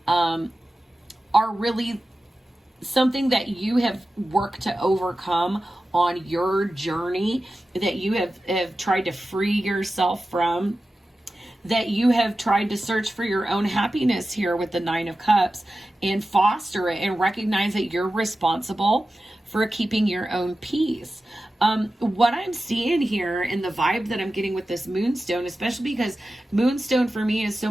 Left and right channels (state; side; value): normal; both; correlation 0.94